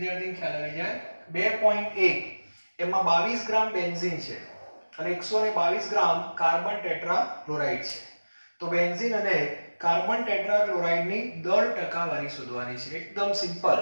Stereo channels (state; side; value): inverted; both; correlation -1.00